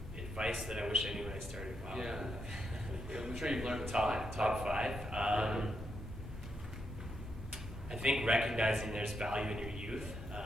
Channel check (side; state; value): both; normal; correlation 0.81